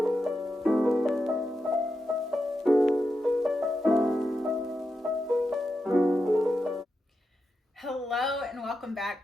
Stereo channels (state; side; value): normal; both; correlation 0.87